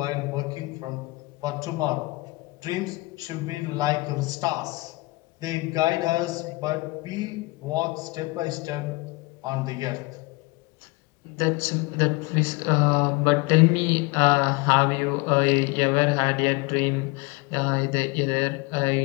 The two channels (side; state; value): right; quieter; 24.0 dB